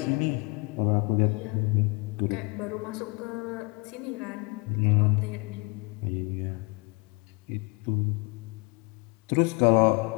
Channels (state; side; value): quieter; right; 29.9 dB